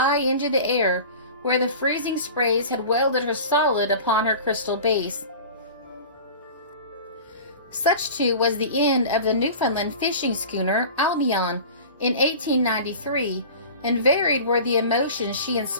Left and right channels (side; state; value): both; inverted; correlation -0.37